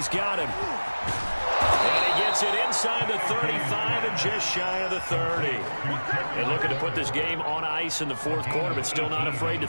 got him. And he gets it inside the 35 and just shy of the 30. And looking to put this game on ice in the fourth quarter, but still not afraid to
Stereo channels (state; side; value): inverted; both; correlation -1.00